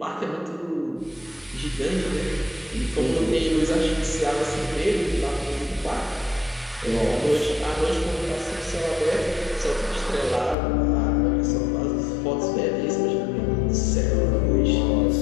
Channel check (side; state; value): right; drops out; at 10.6 s